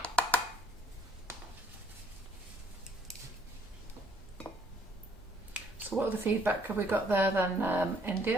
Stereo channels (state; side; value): normal; both; correlation 0.63